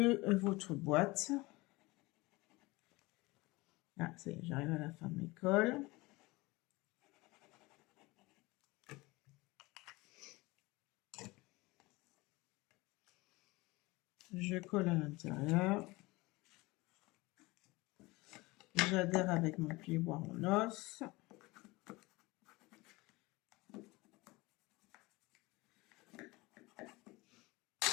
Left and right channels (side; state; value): right; quieter; 22.4 dB